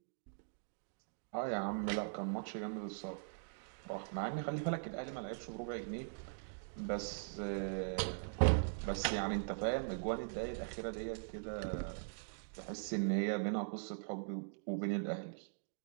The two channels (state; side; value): silent; left; digital silence